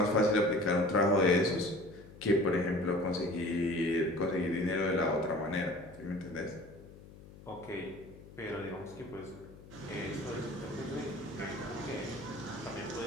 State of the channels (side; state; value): left; noise; hum, 19 dB below the sound